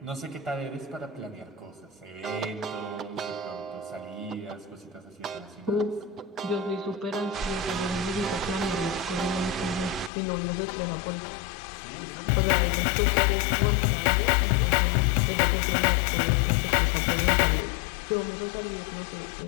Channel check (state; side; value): drops out; right; at 10.1 s